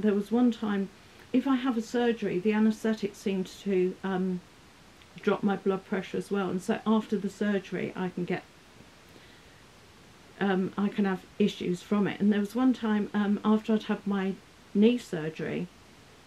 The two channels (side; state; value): both; identical; correlation 1.00